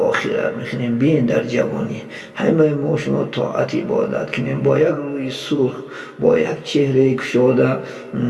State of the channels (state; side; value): identical; both; correlation 1.00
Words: میکنیم. بین در جوانی همه ما و شما طاعت عبادت کنیم، با یک روی سرخ، با یک چهره گشاده